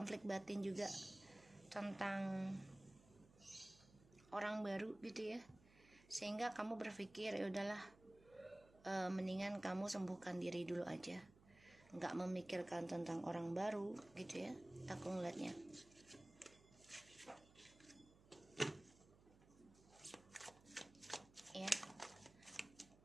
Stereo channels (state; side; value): noise; right; hum, 24 dB below the sound